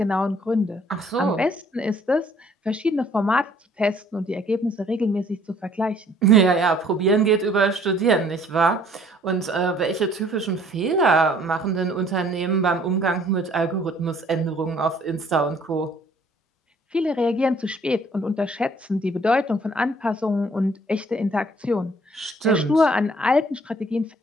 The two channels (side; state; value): both; normal; correlation 0.59